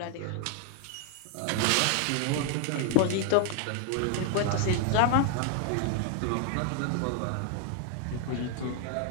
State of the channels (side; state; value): both; different; correlation 0.00